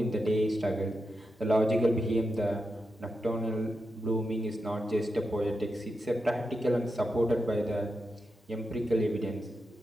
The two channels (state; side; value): normal; both; correlation 0.87